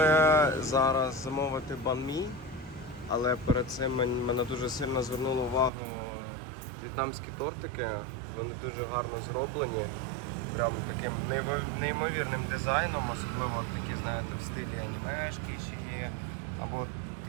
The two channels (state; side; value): drops out; left; at 5.7 s